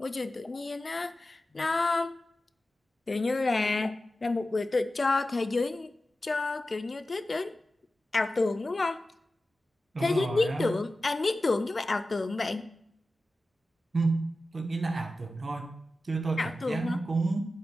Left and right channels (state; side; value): normal; both; correlation 0.94